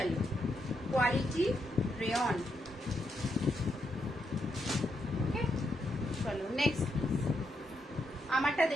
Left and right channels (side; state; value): both; normal; correlation 0.80